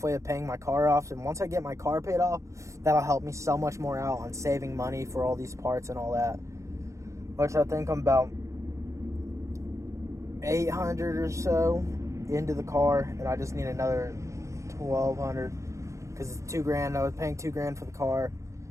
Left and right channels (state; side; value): late; left; 0.15 ms